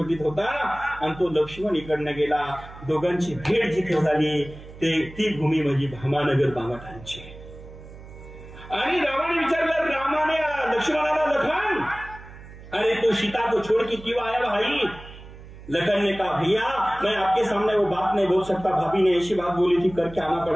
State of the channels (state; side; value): noise; right; hum, 17 dB below the sound